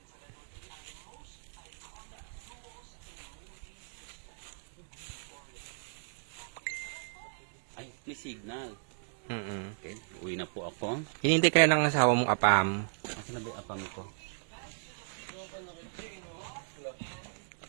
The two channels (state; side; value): silent; left; digital silence